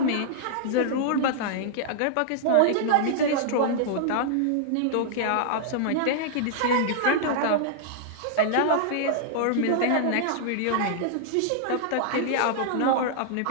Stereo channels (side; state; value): both; different; correlation -0.01